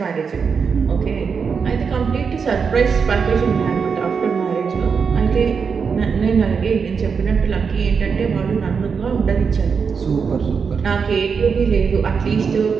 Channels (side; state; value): left; quieter; 5.8 dB